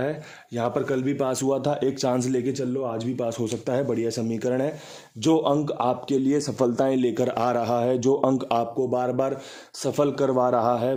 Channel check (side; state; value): both; identical; correlation 1.00